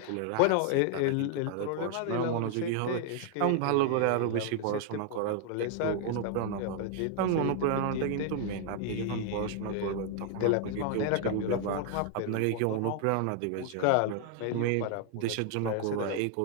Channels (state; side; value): different; both; correlation 0.00